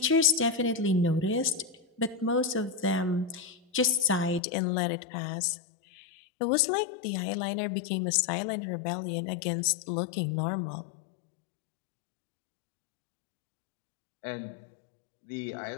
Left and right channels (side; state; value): right; drops out; at 4.4 s